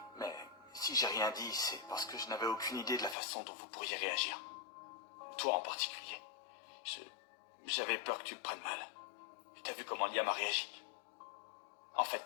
mais si j'ai rien dit, c'est parce que je n'avais aucune idée de la façon dont vous pourriez réagir. Toi en particulier. J'avais peur que tu le prennes mal. T'as vu comment Liam a réagi. En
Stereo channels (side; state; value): right; drops out; at 3.2 s